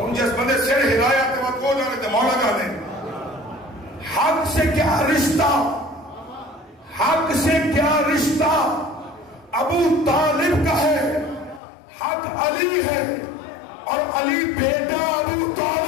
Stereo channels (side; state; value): right; drops out; at 11.6 s